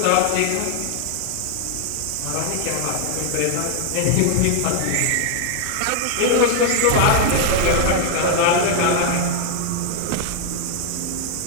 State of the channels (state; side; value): different; both; correlation 0.00